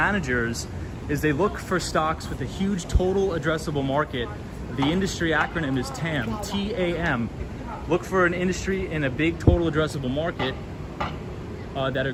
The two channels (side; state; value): both; identical; correlation 1.00